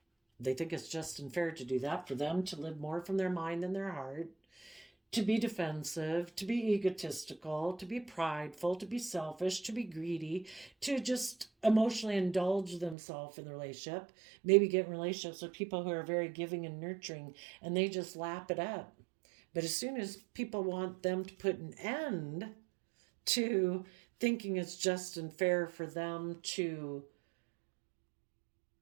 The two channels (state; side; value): drops out; left; at 13.0 s